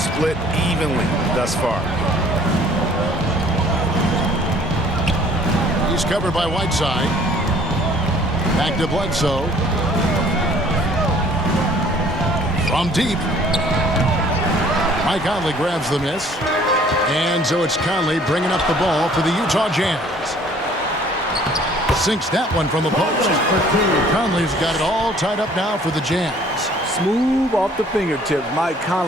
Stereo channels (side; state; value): both; normal; correlation 0.55